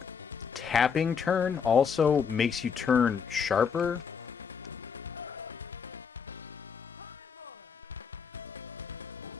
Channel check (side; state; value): right; quieter; 6.5 dB